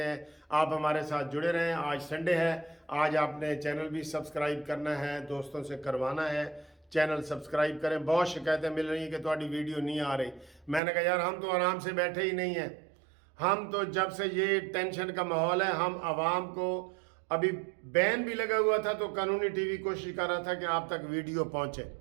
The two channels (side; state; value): left; drops out; at 10.8 s